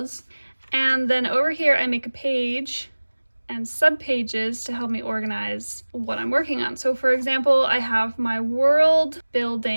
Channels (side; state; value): both; inverted; correlation -1.00